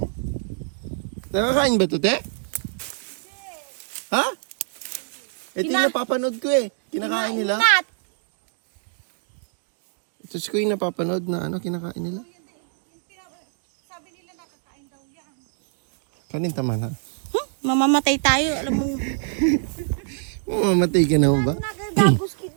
Nakakain ba ito, te? Ha? Ito yung napapanood ko eh. Kinakain nila. Ingat. Ito ko yung napapanood na ano, kinakain nila. Sabi nila nakakain daw yan. Kanin tama na. Mamamatay tayo, alam mo. Mamamatay ka naman ba? Nagagagos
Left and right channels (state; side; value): silent; left; digital silence